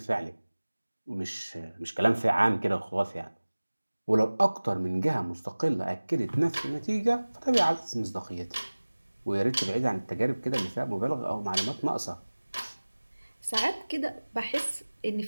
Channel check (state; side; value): inverted; both; correlation -1.00